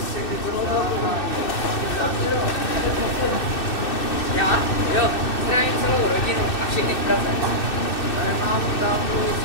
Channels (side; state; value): right; late; 2.6 ms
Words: všechny to Já? Jo, zdravím celou rodinu a všechny v Praze. tady mámu, tátu,